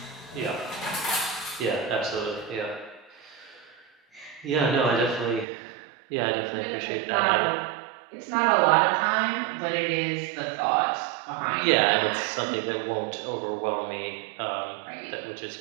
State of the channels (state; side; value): drops out; left; at 5.5 s